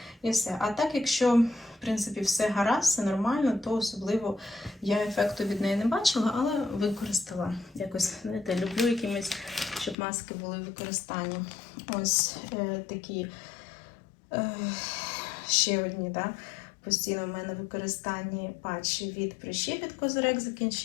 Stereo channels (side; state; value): right; drops out; at 10.0 s